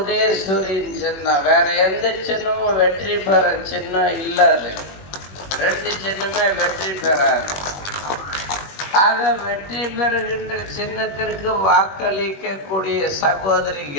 சின்னம். வேற எந்த சின்னமும் வெற்றி பெற சின்னம் இல்லாது. 2 சின்னமே வெற்றி பெறாது. ஆக வெற்றி பெறுகின்ற சின்னத்திற்கு வாக்களிக்கக்கூடிய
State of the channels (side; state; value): right; late; 21 ms